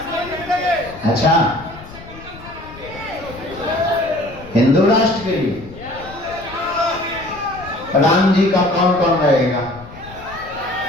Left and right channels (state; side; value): noise; left; rumble, 17 dB below the sound